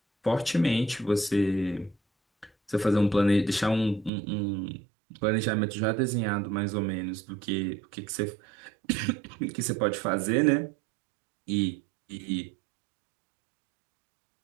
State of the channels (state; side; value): drops out; left; at 4.1 s